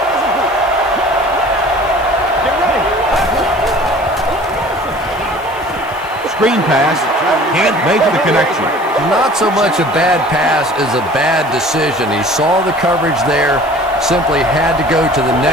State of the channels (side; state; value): right; noise; hiss, 25 dB below the sound